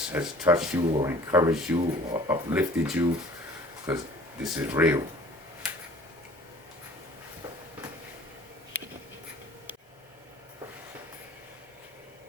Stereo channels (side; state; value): both; normal; correlation 0.49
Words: has touched you or encouraged you or uplifted you, because this is real.